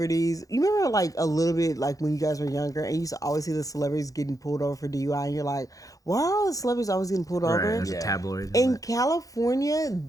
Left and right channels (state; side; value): late; right; 0.17 ms